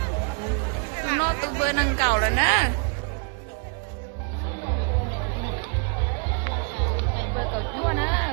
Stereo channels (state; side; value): quieter; left; 39.6 dB